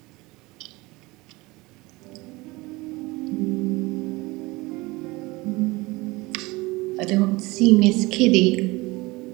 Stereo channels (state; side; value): quieter; left; 22.4 dB